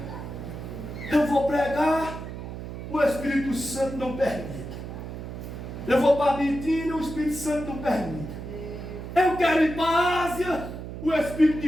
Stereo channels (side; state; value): right; noise; hum, 9 dB below the sound